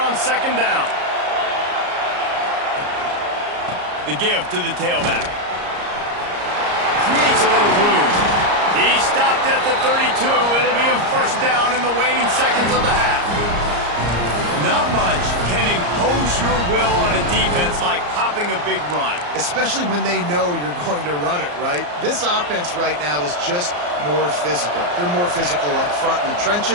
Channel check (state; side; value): late; left; 34 ms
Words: on second down. The give to the tailback. Creates a little room. He stopped at the 32. It'll be a first down in the waning seconds of the half. Not much can impose your will on a defense like popping a big run. Especially when they know you're going to run it, right? This offense right now is just more physical. They're more physical up front in the